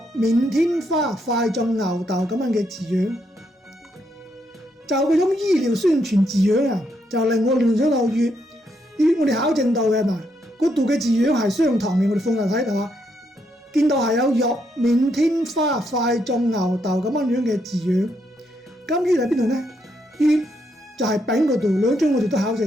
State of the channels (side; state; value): both; normal; correlation 0.77